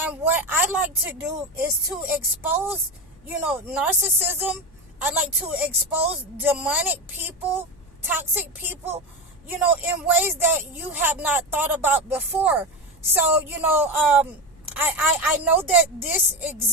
what I like to do is to expose, narcissism. I like to expose demonic people, toxic people, in ways that you have not thought about before. So, I know that this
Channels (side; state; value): both; normal; correlation 0.18